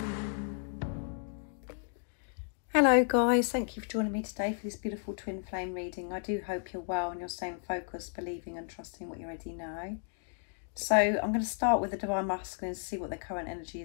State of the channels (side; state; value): right; silent; 55 dB below the other